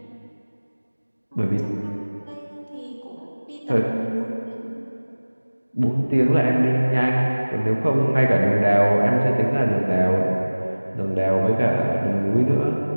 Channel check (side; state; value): both; inverted; correlation -1.00